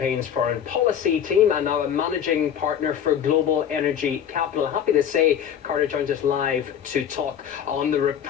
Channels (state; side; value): quieter; right; 9.0 dB